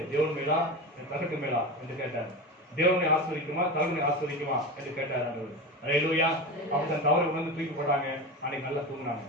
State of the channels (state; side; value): normal; both; correlation 0.24